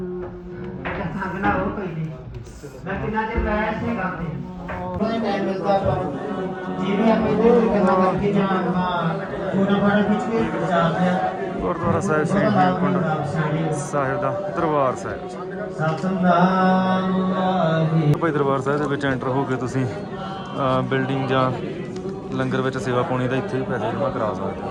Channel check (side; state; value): both; identical; correlation 1.00